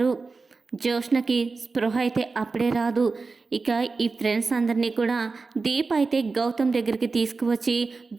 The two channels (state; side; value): quieter; left; 4.1 dB